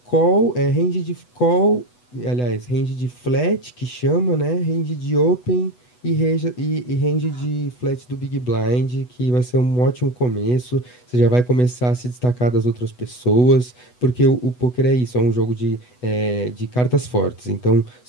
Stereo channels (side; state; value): right; late; 8.1 ms